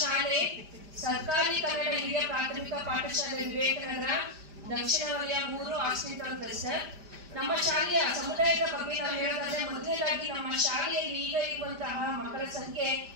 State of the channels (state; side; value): late; left; 5.0 ms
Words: ಶಾಲೆ ಸರ್ಕಾರಿ ಕನ್ನಡ ಹಿರಿಯ ಪ್ರಾಥಮಿಕ ಪಾಠಶಾಲೆ ವಿವೇಕನಗರ ದಕ್ಷಿಣ ವಲಯ 3 ಹಾಸ್ಪಿಟಲ್ ಕ್ಲಸ್ಟರ್. ನಮ್ಮ ಶಾಲೆಯ ಸಮುದಾಯದ ಬಗ್ಗೆ ನಾವು ಹೇಳೋದಾದ್ರೆ ಮೊದಲನೇದಾಗಿ ನಮ್ಮ ಶಾಲೆಯಲ್ಲಿ ಈಗ ಇರುವಂತಹ ಮಕ್ಕಳ ಸಂಖ್ಯೆ